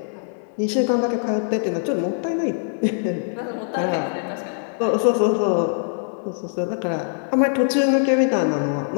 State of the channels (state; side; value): silent; right; 64 dB below the other